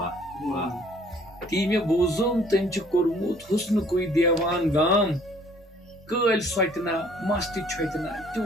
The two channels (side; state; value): both; normal; correlation 0.58